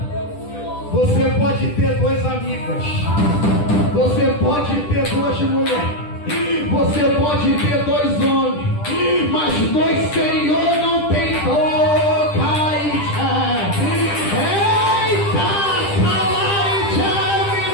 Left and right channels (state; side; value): late; right; 10 ms